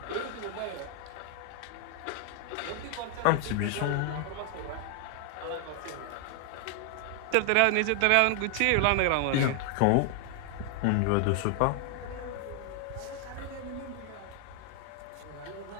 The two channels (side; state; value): both; different; correlation 0.00